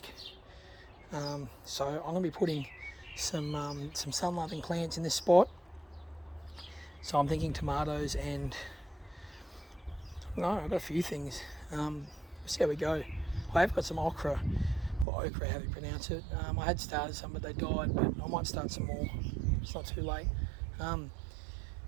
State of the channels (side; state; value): left; drops out; at 15.1 s